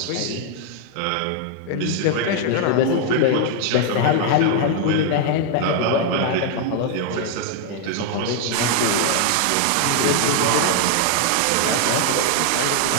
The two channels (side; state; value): both; different; correlation 0.00